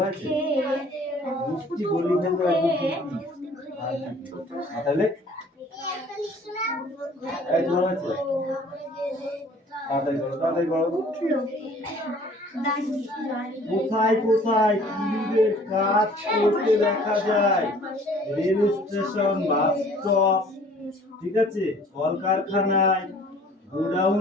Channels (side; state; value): both; normal; correlation 0.53